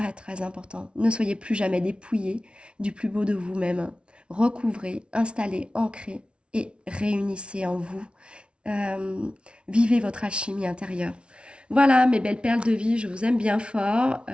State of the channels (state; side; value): late; left; 0.058 ms